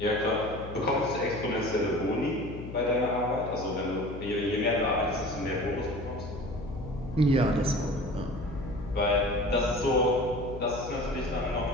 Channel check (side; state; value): left; noise; hum, 10 dB below the sound